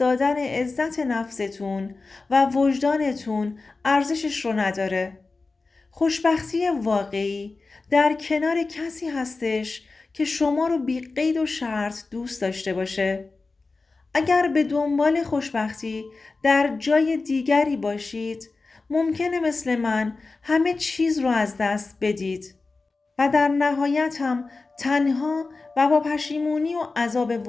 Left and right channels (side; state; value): right; quieter; 3.8 dB